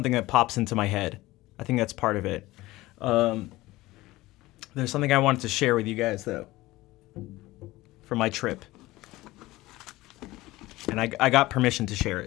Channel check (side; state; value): right; quieter; 18.6 dB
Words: that pops into my head. I think that's part of it. There's something I wanted to share with you guys, though, for my trip. And I got permission to share